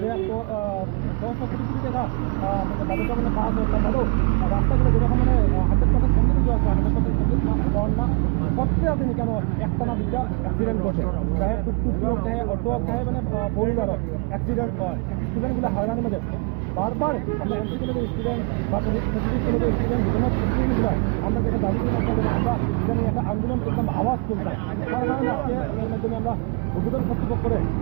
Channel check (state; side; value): quieter; left; 29.6 dB